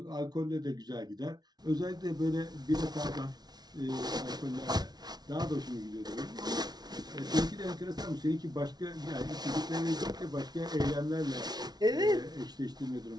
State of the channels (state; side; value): late; left; 0.19 ms